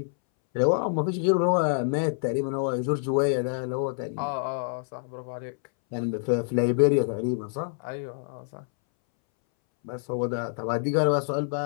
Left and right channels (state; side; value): silent; right; 60 dB below the other